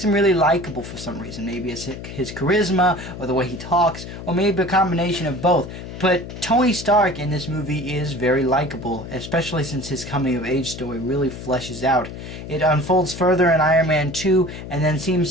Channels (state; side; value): noise; left; hum, 11 dB below the sound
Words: him really likable for some reason. Maybe it's his charisma, or the way he talks, or maybe a combination of both. But Tony Stark in this movie is very likable, especially since his coming-of-age story really fleshes out. It unfolds further in Iron Man 2, and then